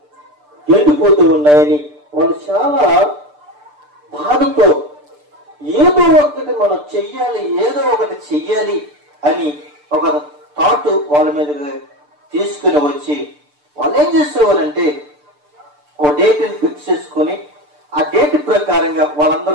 ఎండిపోతూ ఉన్నాయని వాళ్ళు చాలా బాధతో ఏదో ఒకటి మనం చెయ్యాలి అని ఒక థాట్ వాళ్ళ మీద తీసుకుని వచ్చి వాళ్ళు ఏం చేసేవాళ్ళంటే ఓ డేట్ని ఫిక్స్ చేసుకొని ఆ డేట్ ప్రకారంగా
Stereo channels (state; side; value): late; left; 6.8 ms